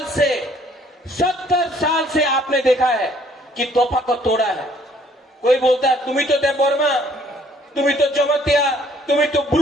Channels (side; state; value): both; normal; correlation 0.61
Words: से आपने देखा है कि तोहफा को तोड़ा है। कोई बोलता है तुम्ही तो देवबर्मा, तुम्ही तो जमतिया, तुम्ही तो